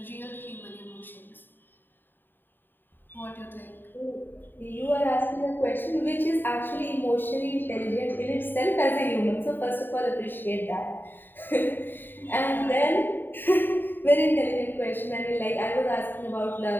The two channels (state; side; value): late; right; 0.094 ms